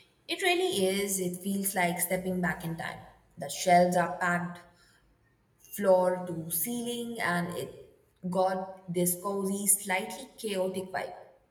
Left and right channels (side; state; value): both; identical; correlation 1.00